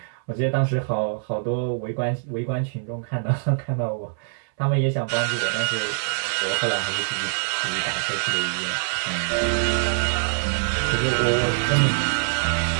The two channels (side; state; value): left; silent; 63 dB below the other